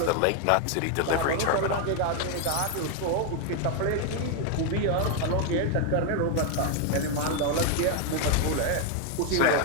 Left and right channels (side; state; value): both; different; correlation 0.01